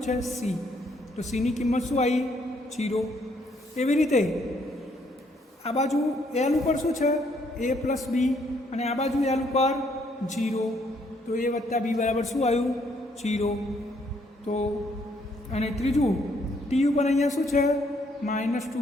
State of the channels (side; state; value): both; normal; correlation 0.69